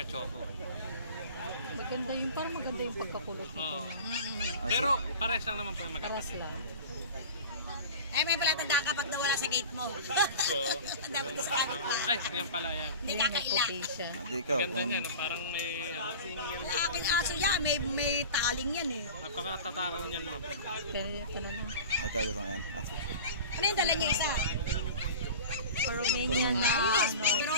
choco. Maganda yung, parang maganda yung pagkakulot nito. Oo. Pero pares lang naman po yung Taras magkapatid. lang. Eh, may pala tanda kapag nawala sa gate mo. Dapat sa kanya pa. Ay, yan pala yan. Hindi May kakaila. puti siya. Hindi ikaw. Ganda Kung... niyan, parang may ano. Wala aking aso yan. May taling yan eh. Napakatatakaw niyan ma'am. Pero ito na lang. Ay, ikaw gusto mo yan. Ah, Ano yung dala niya isa? Romanian na Ayos, ano, pero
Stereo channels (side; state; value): both; inverted; correlation -0.35